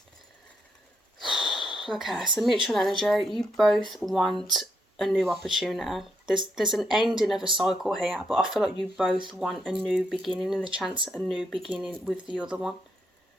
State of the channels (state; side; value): normal; both; correlation 0.77